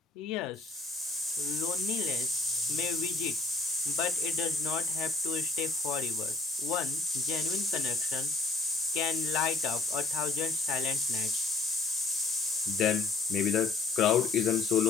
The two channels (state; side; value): quieter; right; 3.8 dB